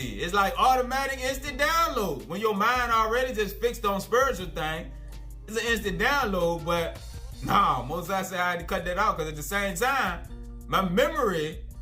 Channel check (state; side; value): identical; both; correlation 1.00